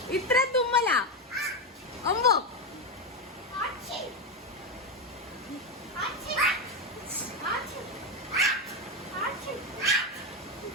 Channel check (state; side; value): normal; both; correlation 0.10